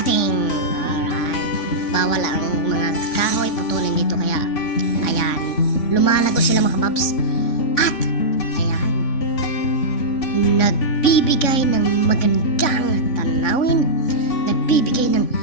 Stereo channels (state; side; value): late; right; 3.5 ms